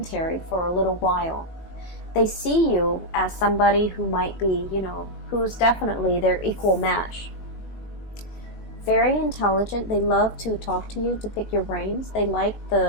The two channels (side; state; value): right; late; 19 ms